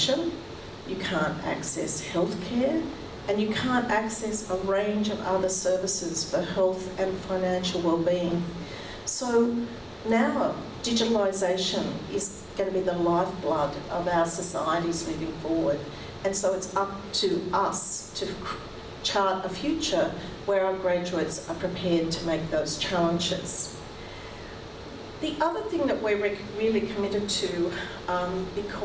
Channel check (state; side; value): identical; both; correlation 1.00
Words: you can't access healthcare, and you can't access a range of other services for health and financial well-being. So now digitalisation is going to be the lifeblood of our societies moving forward. And so it's up to us to chart a future where our graduates are prepared to make those challenges. The other thing that we're really committed to,